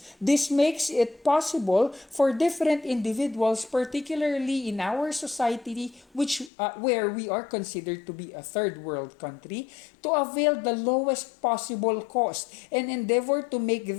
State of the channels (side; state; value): right; drops out; at 6.5 s